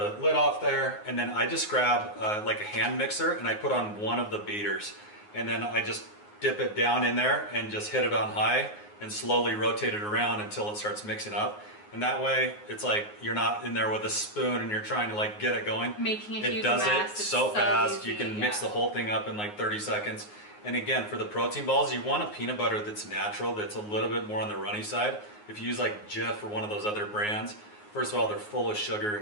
lid off there, and then I just grab like a hand mixer and I put on one of the beaters, and then I just dip it down in there and just hit it on high and slowly rotate it around until it starts mixing up. And that way, it's like you're not in there with a spoon and you're trying to like get it going. Making a huge It does mess. it so fast. Easy, you can mix the whole thing up in like 30 seconds. And again, for the protein balls, you want a peanut butter that's natural, that's a little bit more on the runny side. If you use like Jif or one of those other brands, first of all, they're full of sugar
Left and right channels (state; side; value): late; right; 9.6 ms